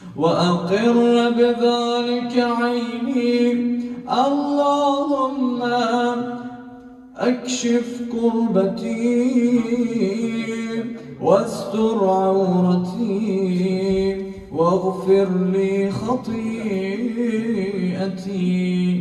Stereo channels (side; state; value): both; identical; correlation 1.00